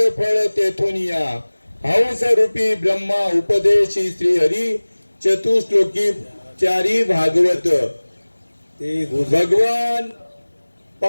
फळ तेथून या. हंस रूपी ब्रह्मा उपदेशी श्री हरी चतुश्लोकी चारी भागवत. ते भगवान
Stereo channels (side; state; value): both; inverted; correlation -1.00